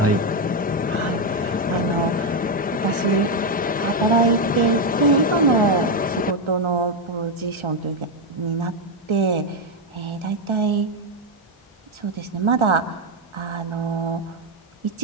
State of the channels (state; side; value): normal; both; correlation 0.05